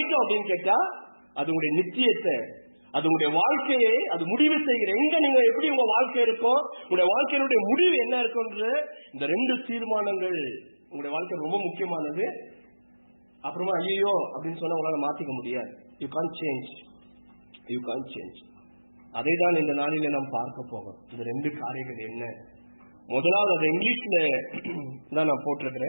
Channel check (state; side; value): inverted; both; correlation -1.00